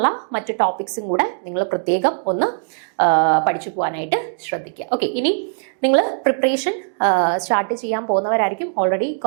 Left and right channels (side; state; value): left; silent; digital silence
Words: മറ്റ് ടോപ്പിക്സും കൂടെ നിങ്ങൾ പ്രത്യേകം ഒന്ന് പഠിച്ചു പോകാനായിട്ട് ശ്രദ്ധിക്കുക. ഓക്കെ, ഇനി നിങ്ങൾ പ്രിപ്പറേഷൻ സ്റ്റാർട്ട് ചെയ്യാൻ പോകുന്നവരായിരിക്കും. ഓൾറെഡി